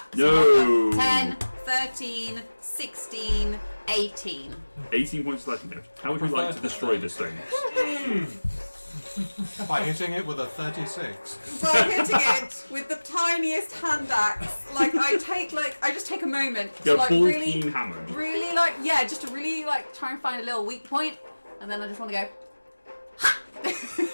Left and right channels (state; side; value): inverted; both; correlation -1.00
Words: So No. I've got 10, 13, 16, 18. 18 points of slashing damage. How would you like to destroy this thing? By hitting it with a 36. By hitting it with the tiniest hand axe, I just take a moment to Go like full really, Keen Hammond. really just to really try and find a little weak point, and then I just want to go.